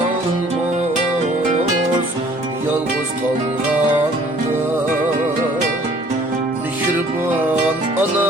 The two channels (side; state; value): both; normal; correlation 0.56